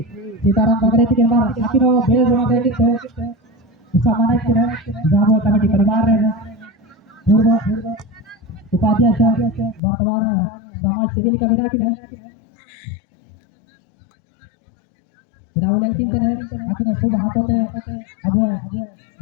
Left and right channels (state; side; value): drops out; right; at 9.8 s